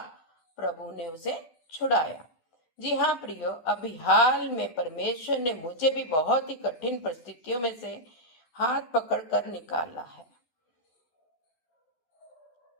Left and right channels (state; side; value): late; right; 12 ms